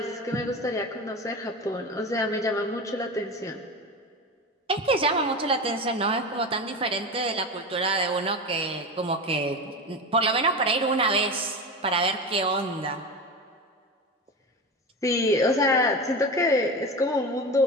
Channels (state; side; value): normal; both; correlation 0.25